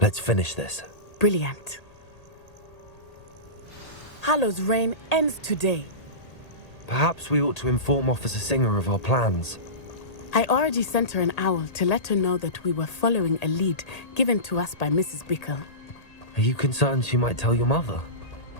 Let's finish this. Brilliant. Harlow's reign ends today. Perhaps we ought to inform Officer Singer of our plans. I already sent her an owl to let her know that we were following a lead given to us by Mrs. Bickle. Are you concerned she might tell your mother?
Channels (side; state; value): right; late; 1.8 ms